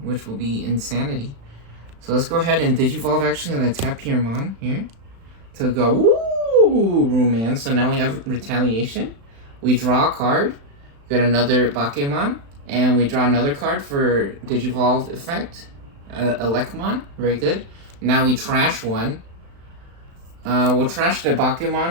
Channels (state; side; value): late; left; 35 ms